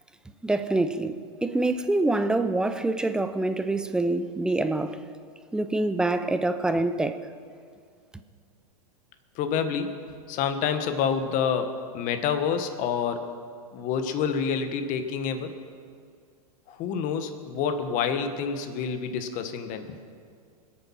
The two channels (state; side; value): normal; both; correlation 0.48